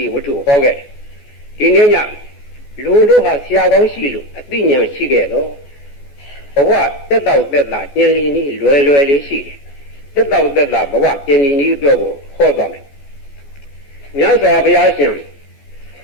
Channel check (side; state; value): right; late; 14 ms